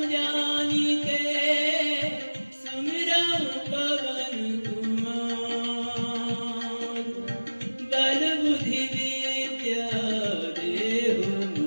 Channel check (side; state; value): both; inverted; correlation -1.00